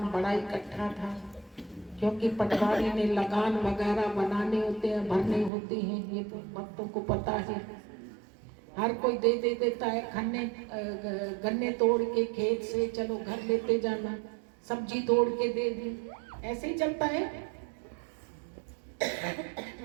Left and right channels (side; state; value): left; drops out; at 5.5 s